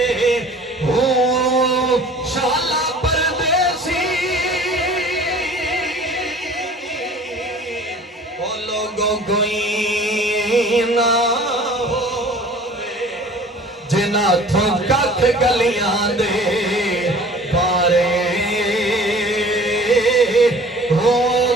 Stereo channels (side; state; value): both; normal; correlation 0.46